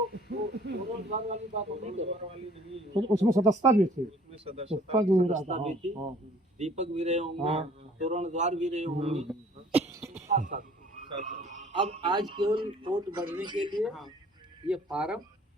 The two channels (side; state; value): both; normal; correlation 0.55